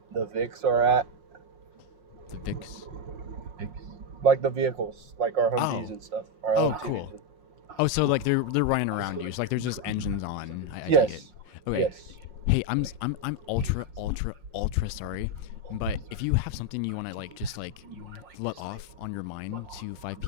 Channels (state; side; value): late; left; 5.6 ms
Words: Vics are at, The VIX. like the vehicles, like our Humvees Oh. and stuff. Our Oh, LMTVs. cool. Oh, so like they're running around you. So like there's just engines on. I take it. Yes. Okay. Yes. Hey, I'm ultra sorry, but if you have something you want to like just like let off on your mind to 5